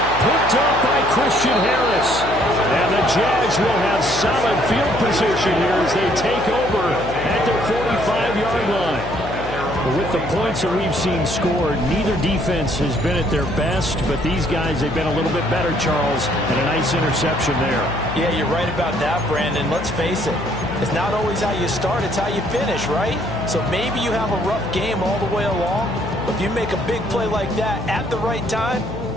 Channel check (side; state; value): left; noise; hum, 10 dB below the sound